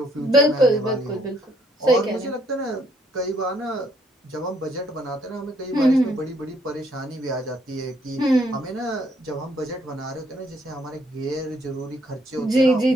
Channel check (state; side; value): normal; both; correlation 0.68